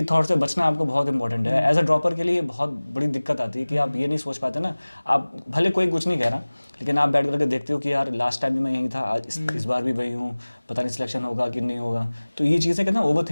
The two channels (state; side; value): inverted; both; correlation -1.00